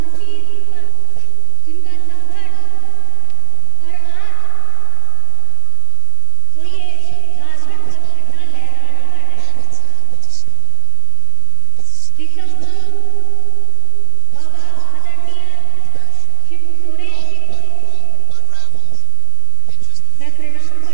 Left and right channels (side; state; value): both; different; correlation 0.00